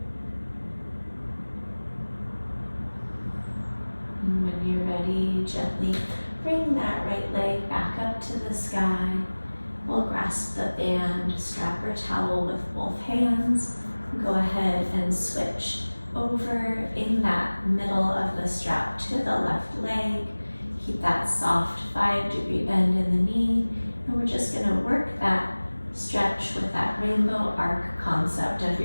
When you're ready, gently bring that right leg back up to the sky. We'll grasp the band, strap, or towel with both hands. Go ahead and switch over in that middle of the strap to the left leg. Keep that soft 5-degree bend in the knee. And we're just going to work that stretch with that rainbow arc concept of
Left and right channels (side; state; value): both; inverted; correlation -1.00